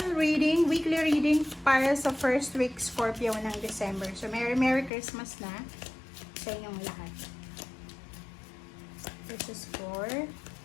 reading, weekly reading para sa first week Scorpio ng December. So, Merry Christmas na sa inyong lahat. This is for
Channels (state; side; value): drops out; right; at 4.9 s